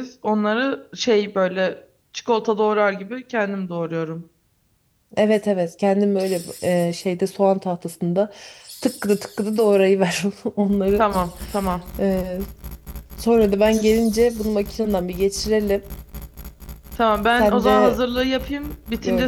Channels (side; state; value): both; identical; correlation 1.00